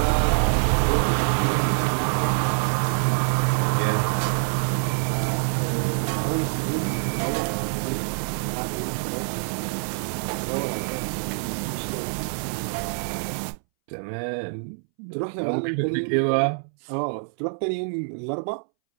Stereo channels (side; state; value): left; silent; 62 dB below the other